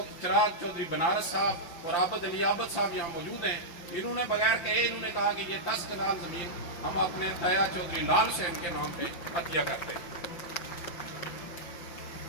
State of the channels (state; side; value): late; right; 5.9 ms